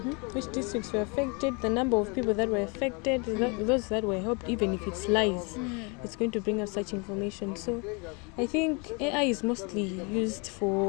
which districts were affected, the number of people that were affected, those that were helped. Even if it's lies, it's going to bring us such information. So I think AI is mostly used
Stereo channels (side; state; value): right; quieter; 32.0 dB